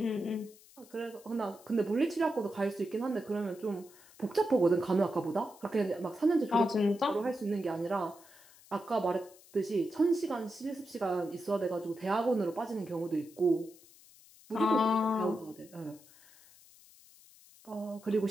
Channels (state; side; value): noise; left; hiss, 24 dB below the sound